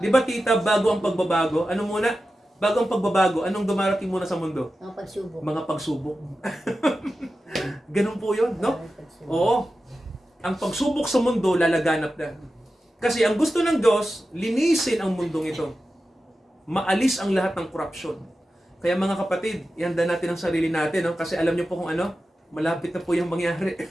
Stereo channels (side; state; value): both; normal; correlation 0.93